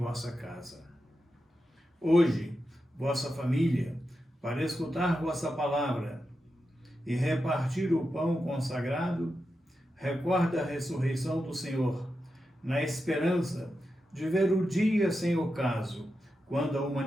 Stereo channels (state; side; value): normal; both; correlation 0.89